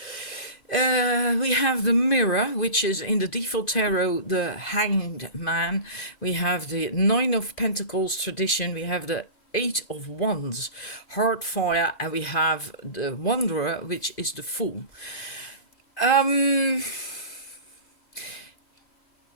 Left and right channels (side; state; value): right; late; 2.5 ms